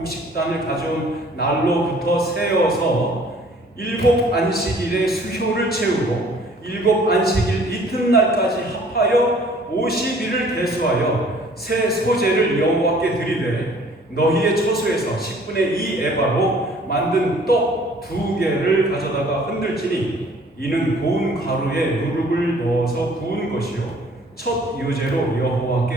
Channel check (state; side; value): normal; both; correlation 0.55